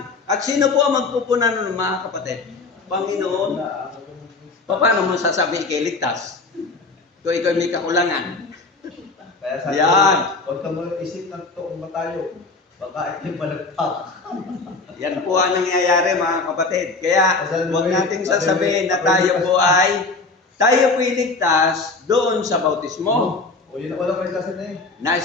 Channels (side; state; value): right; quieter; 3.8 dB